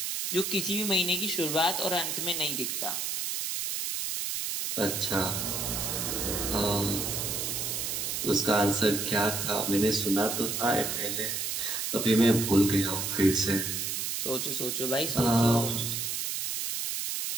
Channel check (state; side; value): noise; right; hiss, 2 dB below the sound